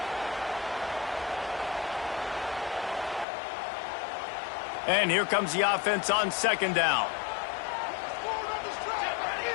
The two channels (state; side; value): drops out; right; at 3.2 s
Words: And here comes the offense on second down.